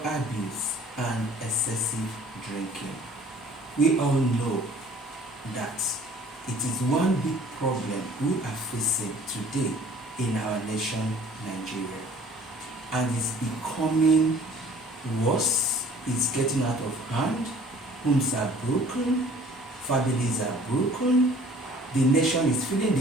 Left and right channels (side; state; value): both; normal; correlation 0.52